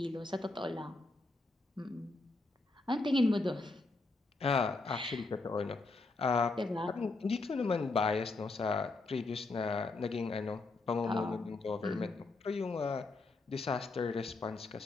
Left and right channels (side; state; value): right; quieter; 3.4 dB